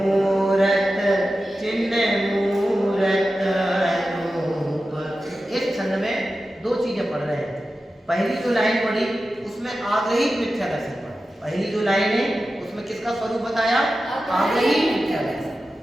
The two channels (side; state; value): both; normal; correlation 0.93